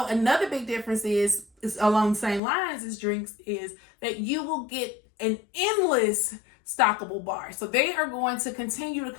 another big difference is along the same lines as drinks is that you will get an endless stockable bar. So they are going to continue to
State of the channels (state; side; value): drops out; right; at 2.4 s